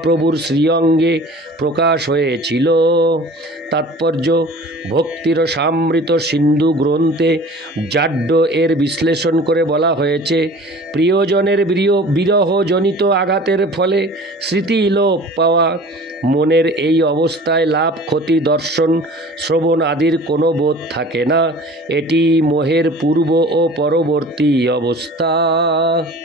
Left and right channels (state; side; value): normal; both; correlation 0.43